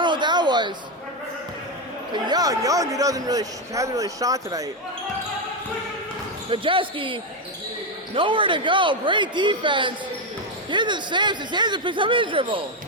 what that was. To Young, who hasn't really shot tonight. Majeski, nowhere to go. Great defense. Here's the Sampson. Sampson picks up his dribble.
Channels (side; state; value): both; normal; correlation 0.07